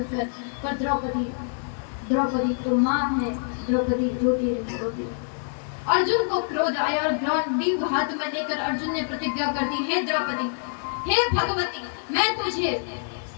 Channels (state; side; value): silent; right; digital silence